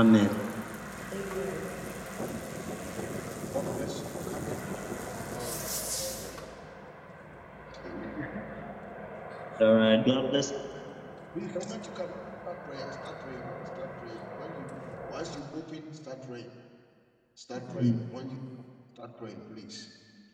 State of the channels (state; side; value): identical; both; correlation 1.00